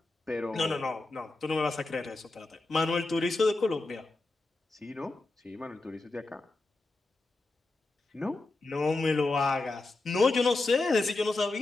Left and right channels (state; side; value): quieter; right; 3.2 dB